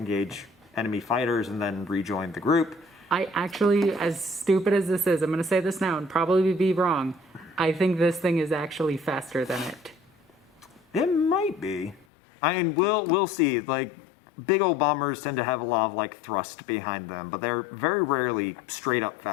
enemy fighters, and then rejoin the group. I actually, as stupid as this is, I'm going to say this now and probably be wrong, I think this thing is actually faster than it. It might be. I mean, we'll see. Big old bombers tend to have a lot of thrust behind them, but they're very rarely straight up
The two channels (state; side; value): drops out; right; at 12.1 s